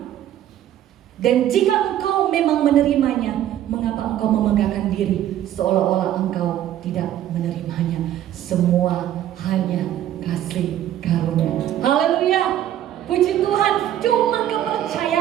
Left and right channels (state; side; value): quieter; left; 11.7 dB